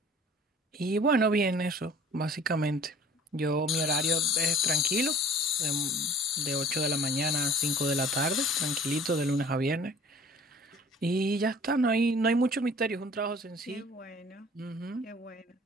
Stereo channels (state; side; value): normal; both; correlation 0.49